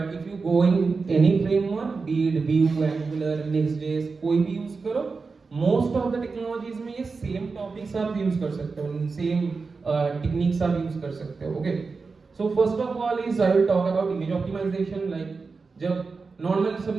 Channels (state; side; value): quieter; left; 4.4 dB